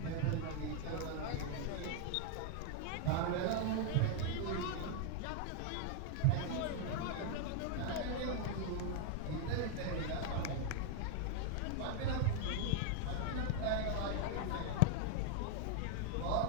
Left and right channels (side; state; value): both; different; correlation 0.00